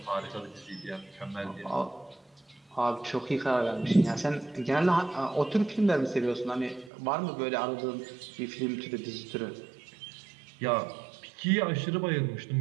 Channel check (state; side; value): drops out; left; at 6.9 s